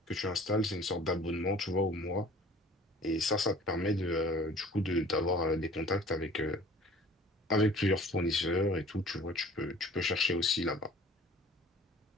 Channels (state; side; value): normal; both; correlation 0.48